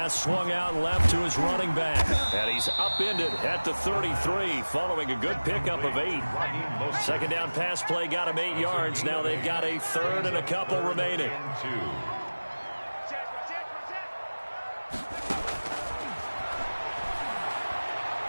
swung out left to his running back. And he's upended at the 33 following a good pickup of 8. Second down pass play got him 8 yards. Now they've got a 3rd and a couple remaining.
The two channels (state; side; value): inverted; both; correlation -1.00